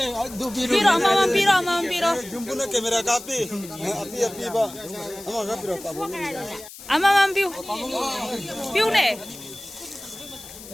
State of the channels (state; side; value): noise; left; hiss, 16 dB below the sound